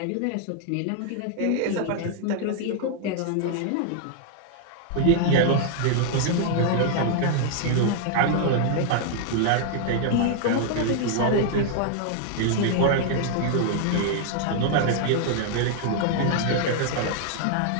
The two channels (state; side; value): different; both; correlation -0.01